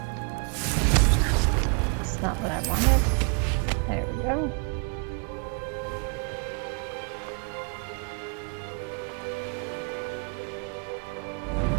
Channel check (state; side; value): quieter; left; 35.7 dB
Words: It's not what I wanted. There we go.